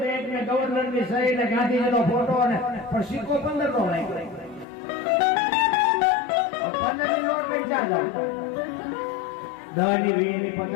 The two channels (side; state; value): right; drops out; at 4.7 s